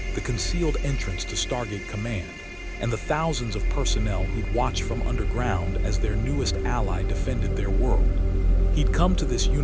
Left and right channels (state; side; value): identical; both; correlation 1.00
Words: the concealed entrance to Stargate Command, and the thousands of personnel who'd watched from underground as their newest ally defended their world. He'd come to this